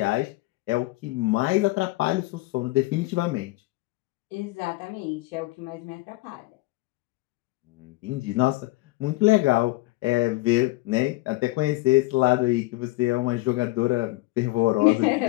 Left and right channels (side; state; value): right; quieter; 20.5 dB